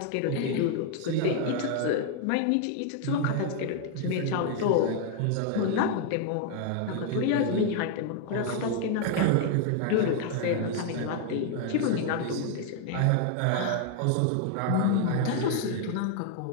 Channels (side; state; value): both; different; correlation 0.00